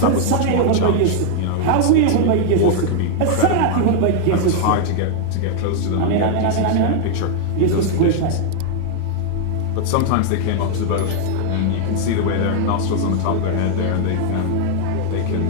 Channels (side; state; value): both; different; correlation 0.00